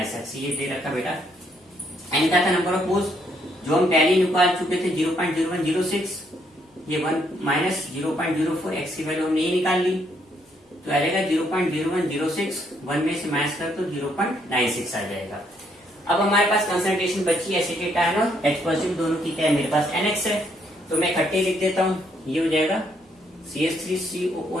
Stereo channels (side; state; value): both; normal; correlation 0.71